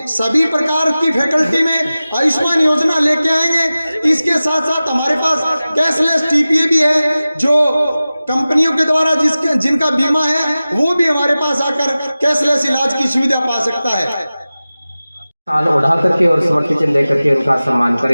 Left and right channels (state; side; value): inverted; both; correlation -0.96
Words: सभी प्रकार की फैकल्टी में आयुष्मान योजना लेके आएंगे। इसके साथ साथ हमारे पास कैशलेस TPA भी है, जो कंपनियों के द्वारा जिनका बीमा है वो भी हमारे पास आकर कैशलेस इलाज की सुविधा पा सकता है। शाल उड़ा करके और स्मृति चिन्ह लेकर के उनका सम्मान